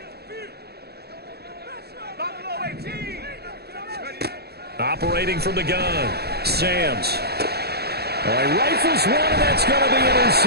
Operating from the gun, Sams. Oh, he rifles one, and that's going to be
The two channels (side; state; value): left; late; 0.47 ms